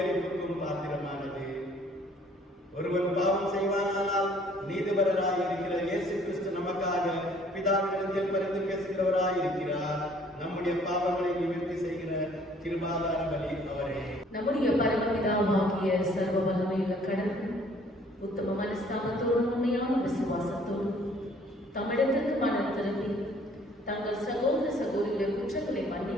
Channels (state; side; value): normal; both; correlation 0.58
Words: பாத்திரமானது. ஒருவன் பாவம் செய்வானால் நீதிபரராய் இருக்கிற இயேசு கிறிஸ்து நமக்காக பிதாவினிடத்தில் பரிந்து பேசுகிறவராய் இருக்கிறார். நம்முடைய பாவங்களை நிவர்த்தி செய்கிற கிருபாதார பலி அவரே. நம்முடைய பரமபிதாவாகிய சர்வ வல்லமையுள்ள கடவுள் உத்தம மனஸ்தாபத்தோடு உண்மையான விசுவாசத்தோடு தமிழகத்திற்கு மனம் திரும்பி தங்கள் சகோதர சகோதரியுடைய குற்றங்களை